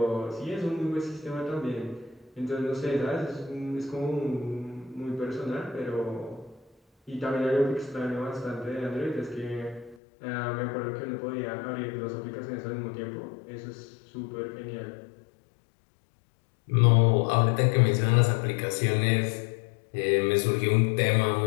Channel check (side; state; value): right; drops out; at 10.0 s